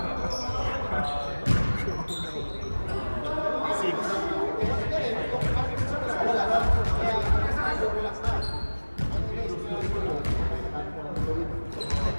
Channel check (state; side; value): inverted; both; correlation -1.00